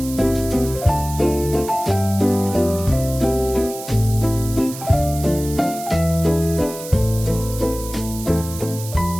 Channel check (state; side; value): noise; right; hiss, 12 dB below the sound